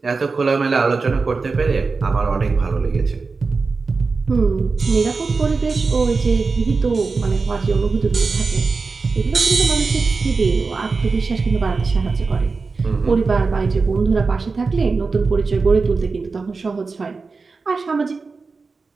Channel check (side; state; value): left; quieter; 4.3 dB